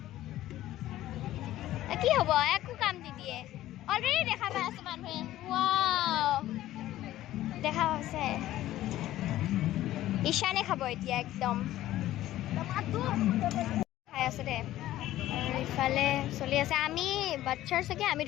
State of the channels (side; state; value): right; quieter; 14.4 dB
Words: কি হ'ব একো কাম নিদিয়ে অলৰেডি দেখা পাই আছে মানুহে ৱাও দেখা হৈছে ঈশানে খাব এতিয়া একদম খাই আছে দে আৰু ইফালে চলি আছে আমি বাচ্চাৰ চাগে আমি